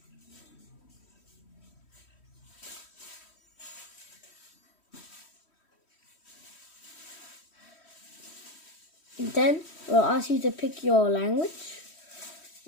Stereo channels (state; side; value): late; right; 3.1 ms